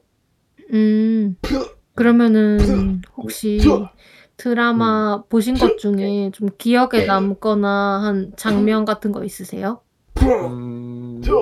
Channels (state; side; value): identical; both; correlation 1.00